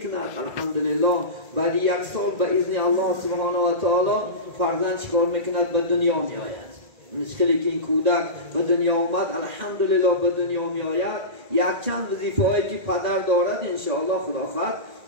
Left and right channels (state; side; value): late; left; 1.8 ms